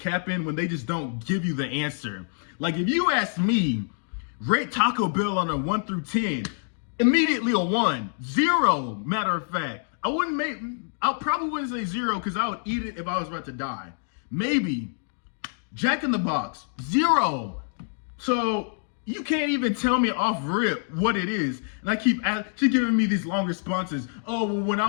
when they just don't give you the answer. Like if you ask me, rate Taco Bell on a 1 through 10, immediately a 1, 0, matter of fact. I probably wouldn't say 0 because I would eat it if I was about to die. Maybe Jack in the Box, 0. So You can't even tell me off rip what it is. And I keep she giving me these long responses. Oh, well, when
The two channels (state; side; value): silent; right; digital silence